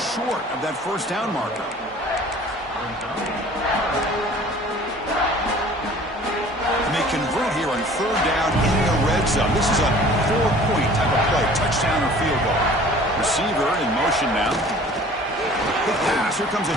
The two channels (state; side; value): normal; both; correlation 0.48